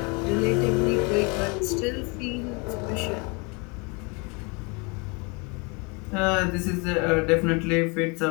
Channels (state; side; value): quieter; right; 30.7 dB